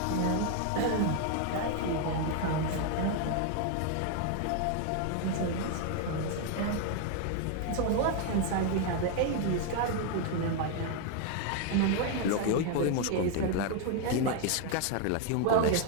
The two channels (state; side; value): different; both; correlation 0.01